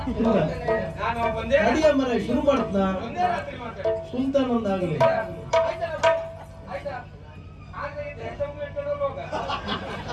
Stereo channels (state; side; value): identical; both; correlation 1.00